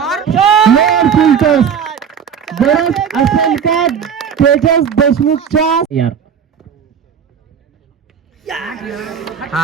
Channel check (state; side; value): quieter; left; 7.5 dB